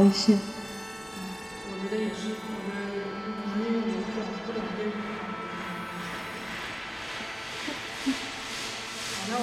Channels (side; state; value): both; identical; correlation 1.00